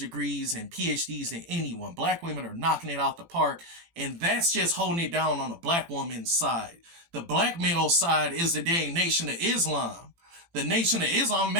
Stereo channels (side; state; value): left; late; 18 ms